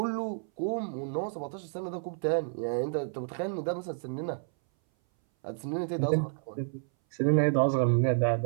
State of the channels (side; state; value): left; silent; 58 dB below the other